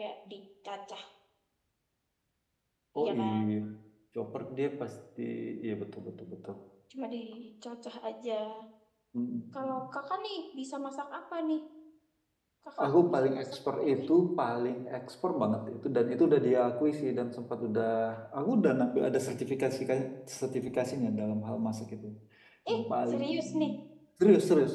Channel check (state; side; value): identical; both; correlation 1.00